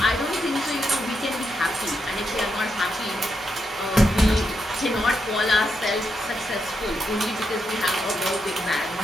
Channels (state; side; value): normal; both; correlation 0.83